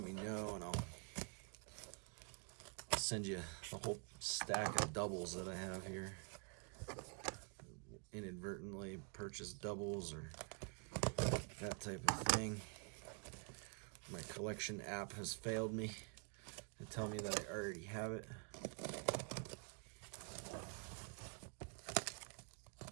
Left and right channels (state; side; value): quieter; left; 37.8 dB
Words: me know and I'll send you a whole stack of doubles that I have here. Inadvertently purchased doubles or that type of thing. My collection app has failed me to tell me that I already have it.